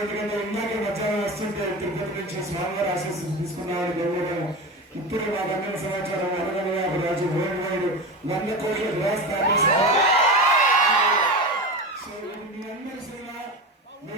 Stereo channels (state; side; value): normal; both; correlation 0.24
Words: ఎందుకంటే ఇందాక మధ్యాహ్నం వస్తుంటే తిరుపతి నుంచి స్వామివారి ఆశీస్సులు తీసుకున్నామని గౌరవం. ఇప్పుడు మాకు అందిన సమాచారం 150 రాజు వరల్డ్ వైడ్ 100 కోట్ల గ్లాస్ దాటేశారు. సో ఇది మీ అందరి సినిమా.